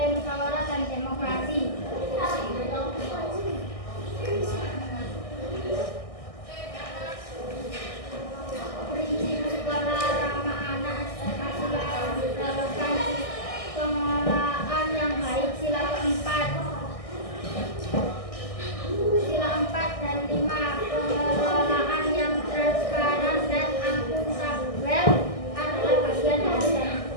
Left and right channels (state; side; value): late; right; 1.6 ms